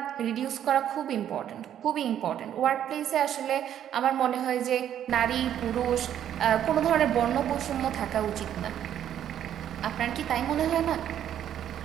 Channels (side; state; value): left; quieter; 10.4 dB